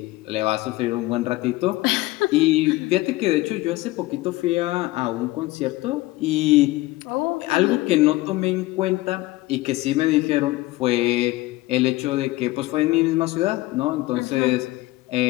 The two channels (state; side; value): quieter; right; 19.1 dB